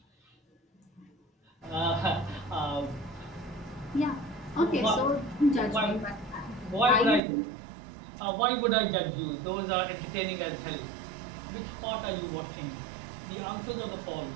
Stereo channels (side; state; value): left; drops out; at 7.2 s